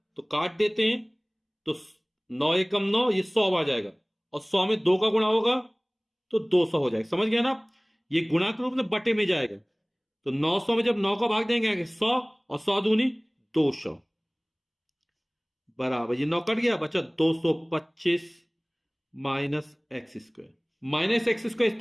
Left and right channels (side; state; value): both; identical; correlation 1.00